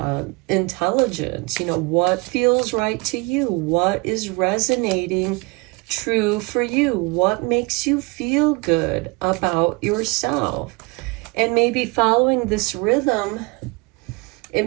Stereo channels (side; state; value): left; quieter; 27.5 dB